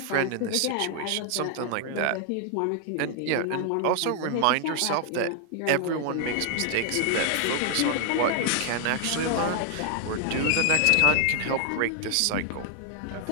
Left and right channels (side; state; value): both; different; correlation 0.00